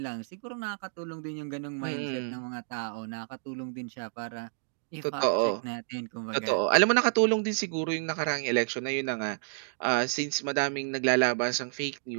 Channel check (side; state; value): left; silent; digital silence